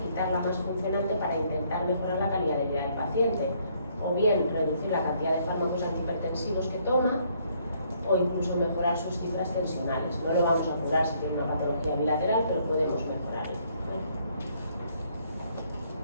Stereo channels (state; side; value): inverted; both; correlation -0.67